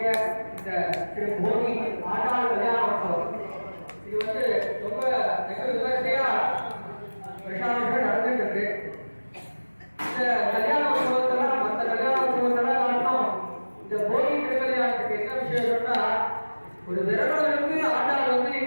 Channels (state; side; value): inverted; both; correlation -1.00